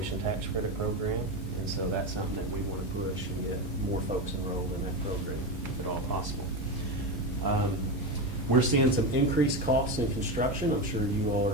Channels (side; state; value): both; normal; correlation 0.16